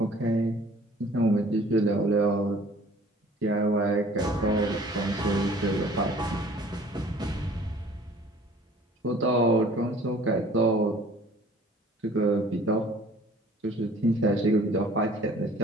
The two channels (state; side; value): normal; both; correlation 0.52